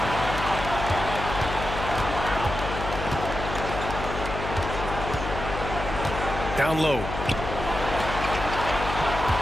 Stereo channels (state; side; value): noise; left; hum, 6 dB below the sound